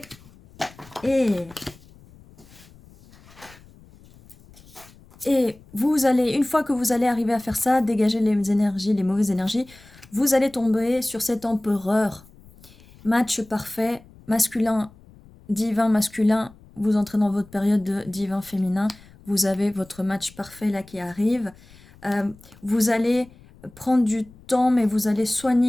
Et vous allez, une fois que vous allez arriver à faire ça, dégager les énergies, les mauvaises énergies, vous allez tomber sur cet empereur. Match parfait, masculin, divin, masculin, vous entrez dans votre période de divin féminin, vous avez votre match parfait là qui arrive. Vous allez prendre du temps, mais vous allez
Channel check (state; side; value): noise; left; rumble, 24 dB below the sound